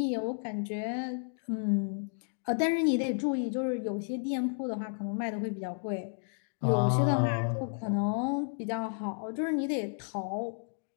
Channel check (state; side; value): silent; right; digital silence